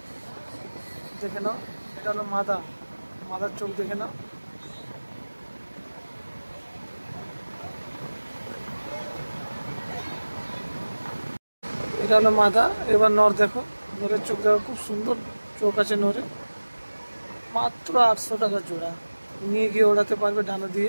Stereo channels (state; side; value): inverted; both; correlation -1.00